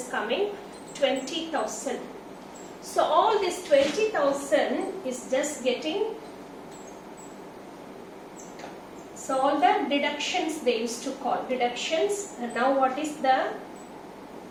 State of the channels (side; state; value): both; identical; correlation 1.00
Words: coming 20,000. So all this 20,000 is just getting, so all the deductions they used to call deductions. And now what is the,